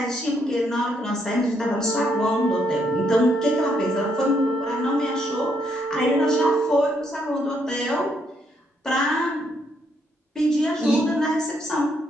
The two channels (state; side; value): normal; both; correlation 0.74